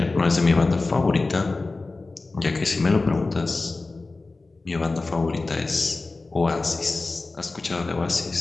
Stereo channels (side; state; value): right; quieter; 3.5 dB